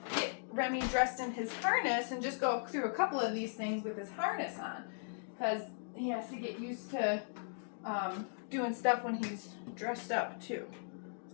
get Remy dressed in his harness and just go through a couple of these things with his harness on because he has to get used to doing stuff when he's dressed up too,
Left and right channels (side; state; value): right; silent; digital silence